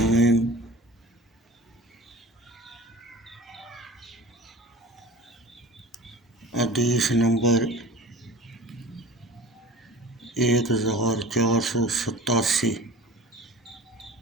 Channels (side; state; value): both; normal; correlation 0.39